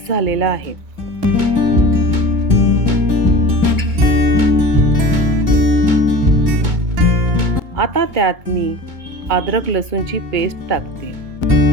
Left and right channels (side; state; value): left; late; 2.2 ms